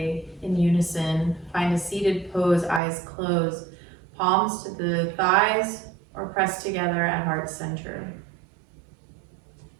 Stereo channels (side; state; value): left; drops out; at 2.8 s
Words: in unison. Find a seated pose, eyes closed, palms to the thighs or pressed together at heart center.